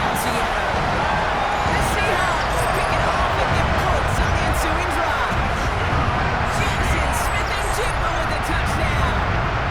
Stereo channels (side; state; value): both; identical; correlation 1.00